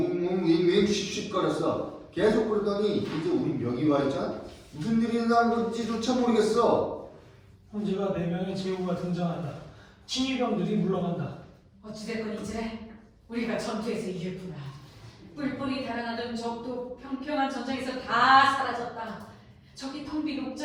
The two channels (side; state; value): both; identical; correlation 1.00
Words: 윙윙 씩씩거렸어. 계속 그러더니 이제 우리 명이 와 있잖아. 무슨 일이 일어난 건지조차 모르겠어. 황제가 4명의 제후가 등장한다. 친위병들이 물러간다. 어찌됐건 이제 우리가 전투에서 이겼구나. 뿔뿔이 달아나던 적도 평평한 전장에서 다 사라졌다. 저기 텅 빈